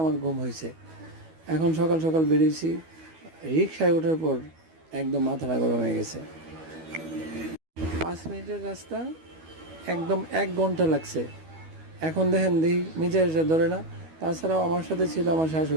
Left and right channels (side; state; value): left; late; 12 ms